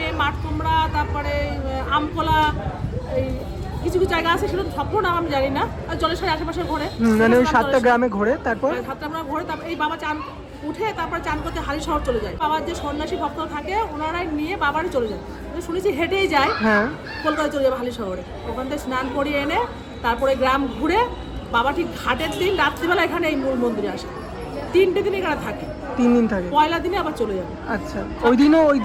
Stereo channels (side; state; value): both; identical; correlation 1.00